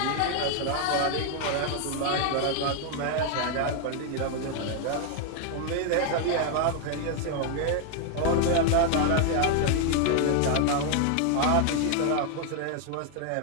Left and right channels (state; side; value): different; both; correlation 0.00